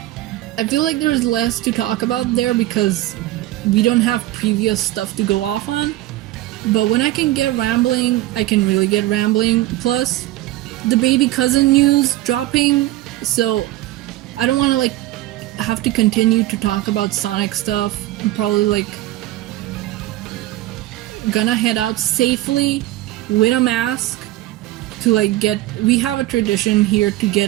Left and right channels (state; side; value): quieter; left; 16.2 dB